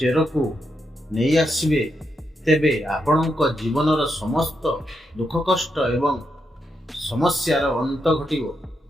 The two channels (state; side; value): normal; both; correlation 0.83